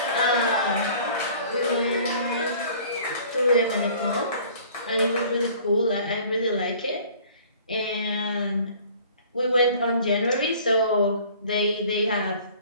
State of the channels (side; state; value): both; inverted; correlation -0.50